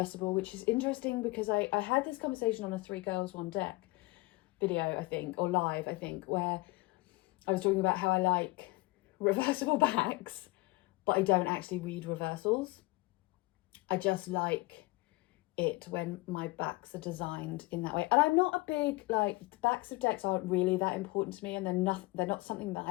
which is interesting because I had this conversation on a 3 Girls 1 Deck video, I think, or live, I think, where I was talking about how I like reversible backs, but I don't actually read reversals. I just like it when my backs are designed in that way. And I'm not a big, like, the backs of decks aren't really that important to me, and they're not something that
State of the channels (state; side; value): quieter; right; 22.8 dB